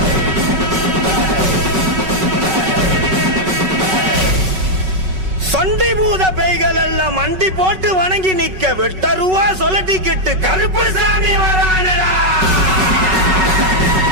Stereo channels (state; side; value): late; left; 5.3 ms